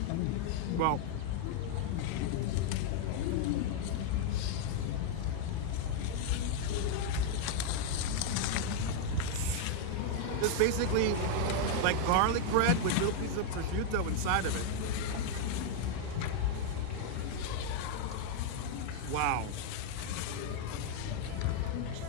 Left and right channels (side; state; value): both; different; correlation 0.00